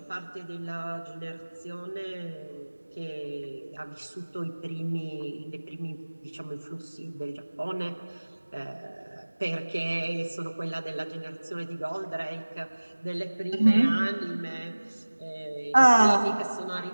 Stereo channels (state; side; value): inverted; both; correlation -1.00